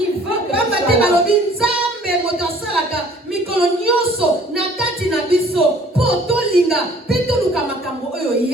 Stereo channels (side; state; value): both; normal; correlation 0.54